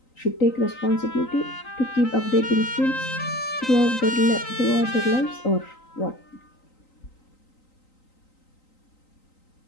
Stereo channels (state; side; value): late; right; 3.9 ms